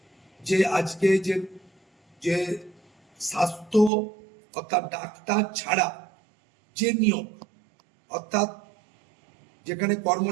যে আজকে যে স্বাস্থ্য অর্থাৎ ডাক্তার ছাড়া যে নিয়োগ, অর্থাৎ যেখানে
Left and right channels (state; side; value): drops out; left; at 3.9 s